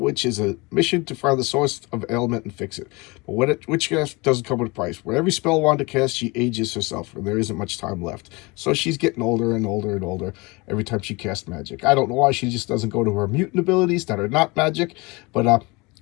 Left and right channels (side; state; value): right; quieter; 25.5 dB